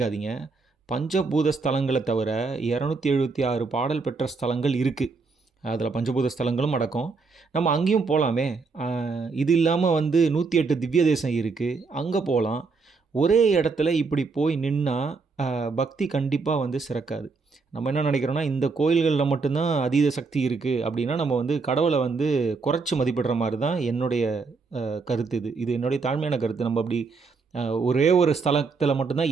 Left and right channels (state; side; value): quieter; left; 4.4 dB